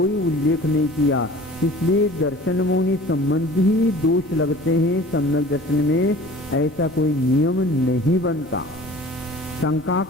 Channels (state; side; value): normal; both; correlation 0.44